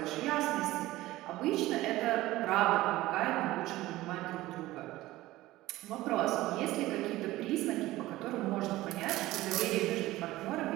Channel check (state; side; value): quieter; left; 17.2 dB